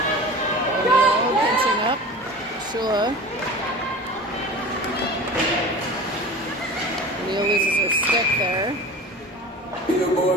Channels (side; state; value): both; normal; correlation 0.35